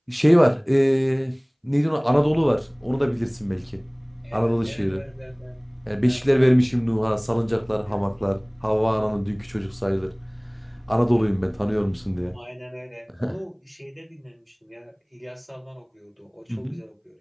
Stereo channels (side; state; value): both; identical; correlation 1.00